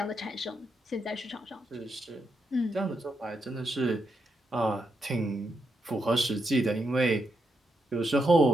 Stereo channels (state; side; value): normal; both; correlation 0.82